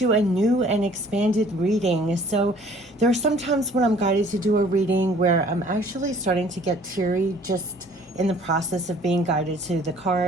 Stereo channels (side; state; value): both; normal; correlation 0.55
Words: a new and expanded reading. So there are some times when I'm guided to do a reading where I'm actually starting to get teary just in the process of being guided to the